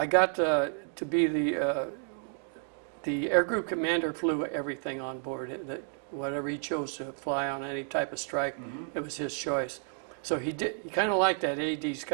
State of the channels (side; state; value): left; silent; 57 dB below the other